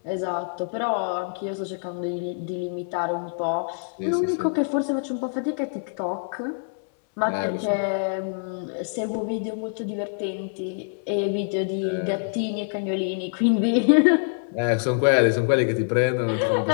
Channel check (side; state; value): right; silent; 62 dB below the other